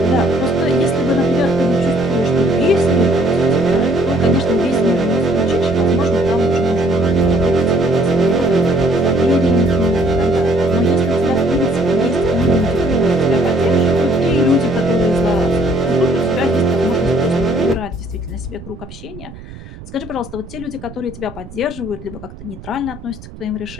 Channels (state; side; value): noise; right; rumble, 16 dB below the sound